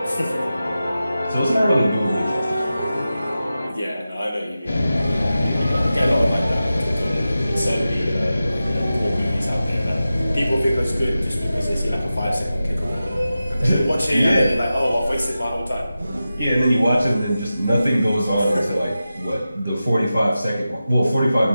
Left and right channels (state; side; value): inverted; both; correlation -0.93